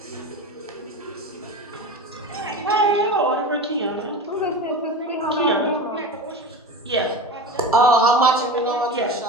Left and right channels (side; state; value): both; normal; correlation 0.28